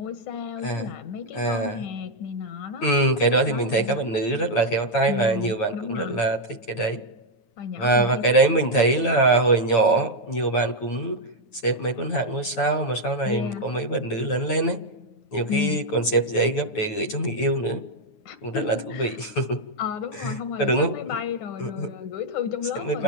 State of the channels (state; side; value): late; right; 9.5 ms